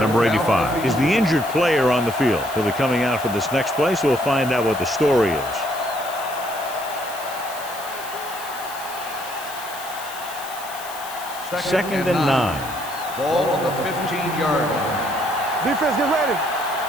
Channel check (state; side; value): noise; left; hiss, 14 dB below the sound